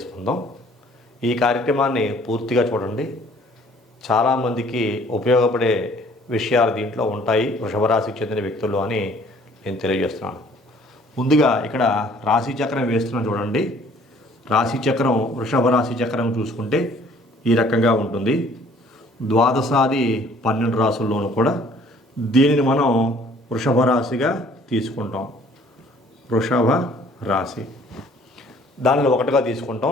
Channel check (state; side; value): normal; both; correlation 0.57